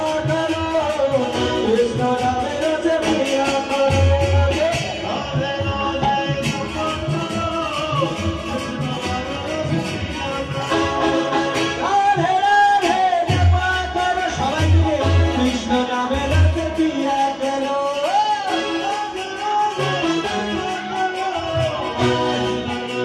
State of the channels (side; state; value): both; identical; correlation 1.00